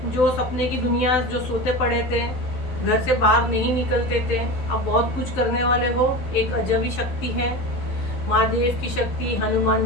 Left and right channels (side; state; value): right; late; 12 ms